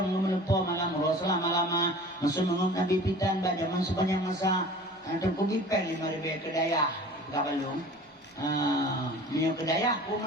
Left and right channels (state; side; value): normal; both; correlation 0.42